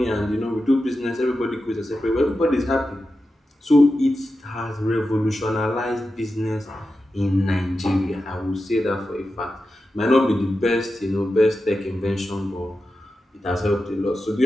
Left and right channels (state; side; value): normal; both; correlation 0.91